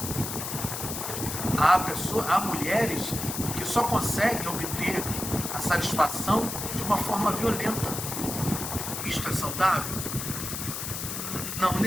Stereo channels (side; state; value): left; noise; hiss, 5 dB below the sound